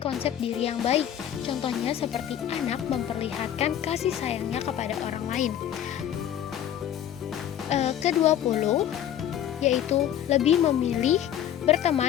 diri yang baik. Contohnya seperti anak memperlihatkan kasih sayangnya kepada orang lain. Ke-20 yaitu lebih memilih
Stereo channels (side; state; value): right; quieter; 10.5 dB